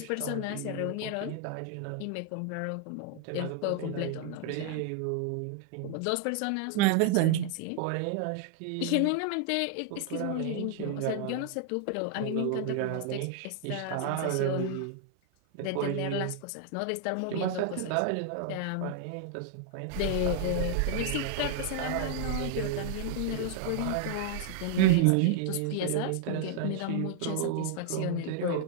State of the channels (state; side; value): different; both; correlation 0.00